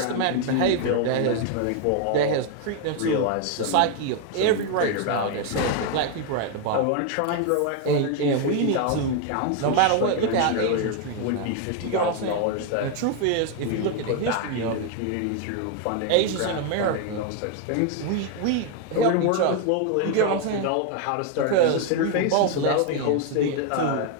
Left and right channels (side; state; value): both; different; correlation 0.01